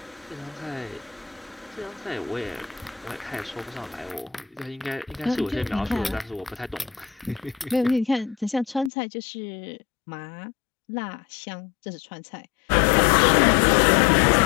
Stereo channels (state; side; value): drops out; right; at 8.9 s